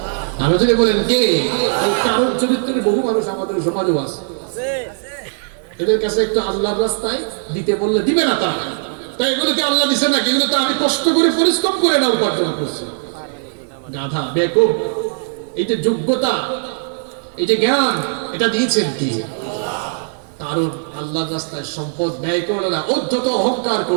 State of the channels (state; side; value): silent; left; digital silence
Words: আমি যদি বলেন কে? কারণ চরিত্রের বহু মানুষ আমাদের সমাজেও আছে, এদের কাছে একটু আল্লাহর রাস্তায় দিতে বললে দিবে না তারা। তাই এগুলোকে আল্লাহ দিছে না, এগুলো তো আমি কষ্ট করে পরিশ্রম করে না উপার্জন করছি। গাধা, বেকুব, এই যে যোগ্যতা, এই যে জ্ঞান, এটা দিয়েছেন কি? কারণ আল্লাহর রাস্তায় সম্পদ ব্যয় করলো না, অধ্যত অহংকার